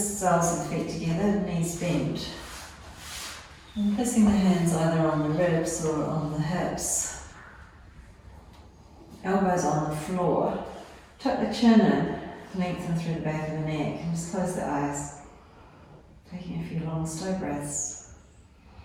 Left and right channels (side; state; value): both; identical; correlation 1.00